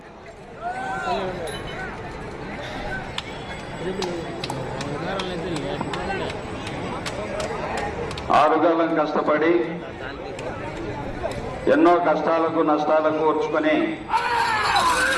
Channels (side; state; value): both; identical; correlation 1.00